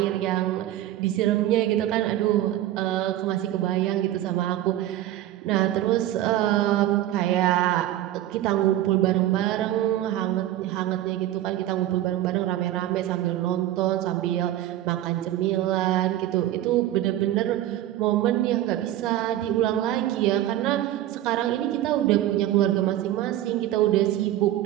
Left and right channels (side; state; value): left; quieter; 13.5 dB